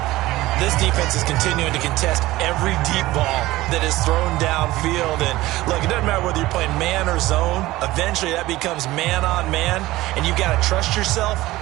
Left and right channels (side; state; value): left; quieter; 17.7 dB